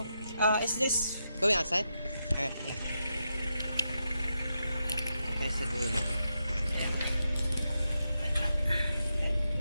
Is this going outside? Alright, yeah. Ito tayo sa dulo. Ayan.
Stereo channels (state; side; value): inverted; both; correlation -0.86